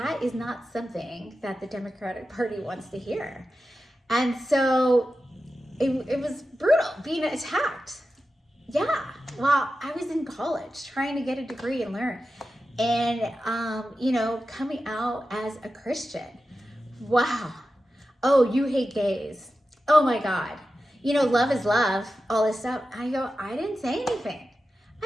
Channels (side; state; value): both; normal; correlation 0.92